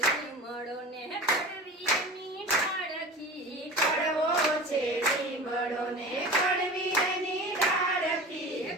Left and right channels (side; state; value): both; normal; correlation 0.35